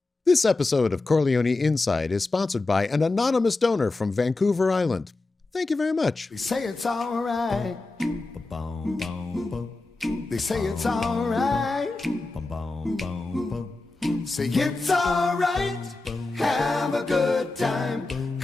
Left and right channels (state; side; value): quieter; right; 3.3 dB